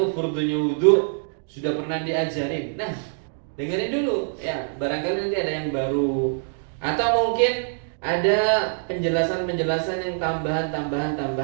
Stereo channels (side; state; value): left; silent; digital silence